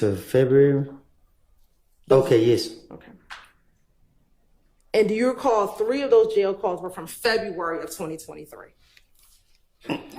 February? Okay, yes. Okay. And do you recall 3 of those jail calls were from February of 2023?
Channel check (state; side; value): identical; both; correlation 1.00